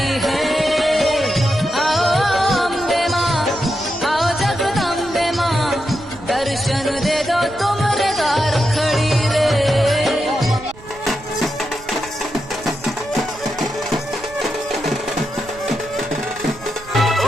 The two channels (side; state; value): right; noise; rumble, 20 dB below the sound